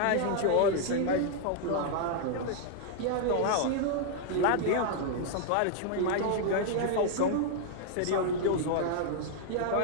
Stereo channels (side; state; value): both; different; correlation 0.00